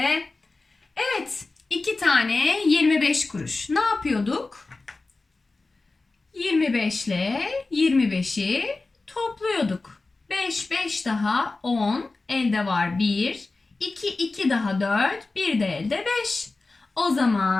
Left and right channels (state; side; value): quieter; right; 3.5 dB